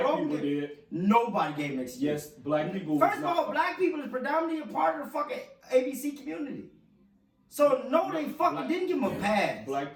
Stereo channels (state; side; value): identical; both; correlation 1.00